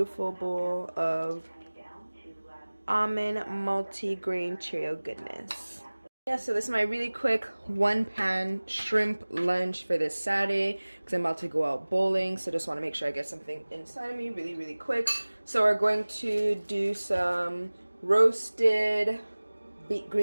bowl of almond multi-grain Cheerio goodness. Yeah, so this is my really quick one-pan shrimp lunch for this Saturday because I'm about to go out bowling, so just want to make sure I get something inside of me really quick. So we're going to do some roasted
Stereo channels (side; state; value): both; inverted; correlation -1.00